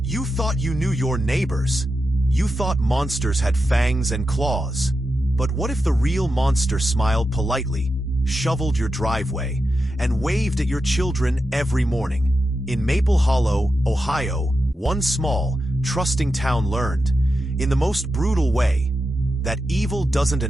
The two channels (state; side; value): normal; both; correlation 0.89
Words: You thought you knew your neighbors. You thought monsters had fangs and claws. But what if the real monster smiled politely, shoveled your driveway, and waved at your children every morning? In Maple Hollow, Ohio, one small, trusting town learned, in the most brutal way, that evil doesn't